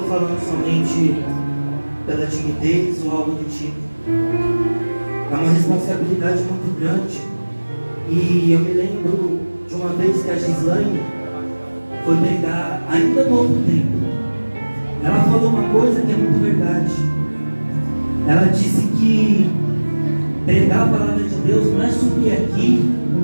falando somente pela timidez ou algo do tipo. É uma responsabilidade muito grande. E eu me lembro de uma vez que a Gislaine foi pregar ainda no outro tempo. Ela falou uma coisa que é muito verdade. Ela disse que pregar a palavra de Deus não é subir aqui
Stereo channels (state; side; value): inverted; both; correlation -1.00